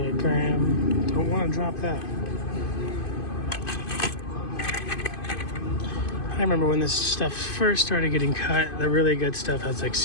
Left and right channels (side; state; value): right; late; 2.5 ms